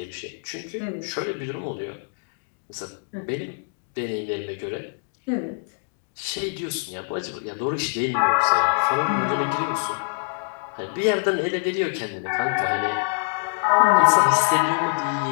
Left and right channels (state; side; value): silent; right; digital silence